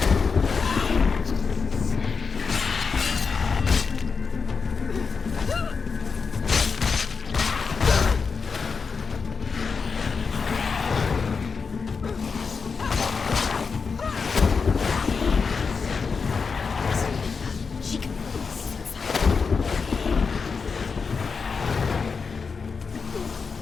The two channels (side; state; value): right; quieter; 5.2 dB